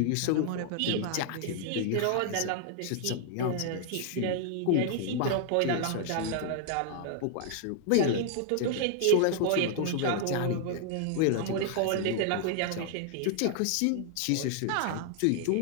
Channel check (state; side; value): different; both; correlation 0.00